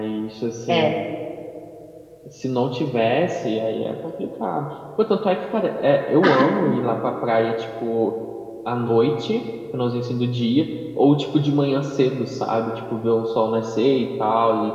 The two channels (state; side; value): identical; both; correlation 1.00